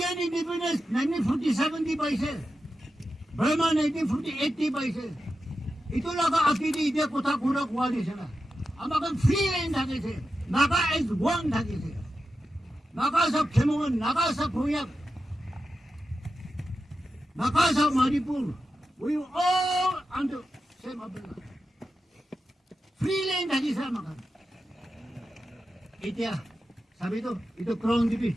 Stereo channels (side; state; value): both; normal; correlation 0.90